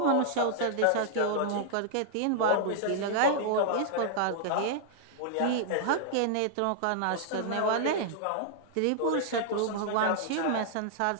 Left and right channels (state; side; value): different; both; correlation -0.01